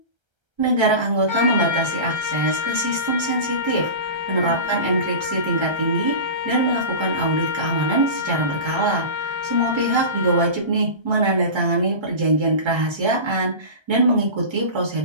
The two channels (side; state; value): left; late; 1.3 ms